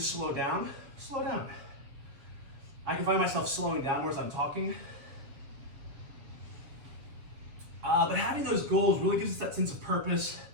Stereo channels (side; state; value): left; late; 7.4 ms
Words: down, slow down. I can find myself slowing down more as I'm talking. But having those goals really gives us that sense of purpose